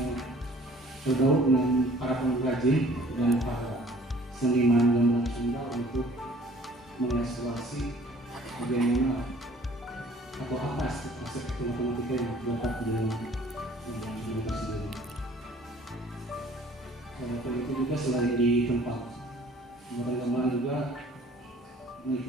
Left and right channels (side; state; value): both; normal; correlation 0.53